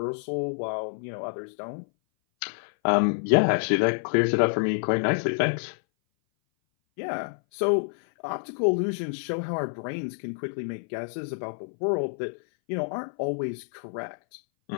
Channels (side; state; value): right; silent; 58 dB below the other